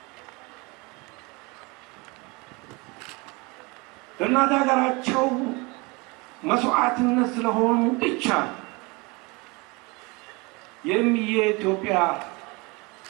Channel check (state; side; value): quieter; left; 26.6 dB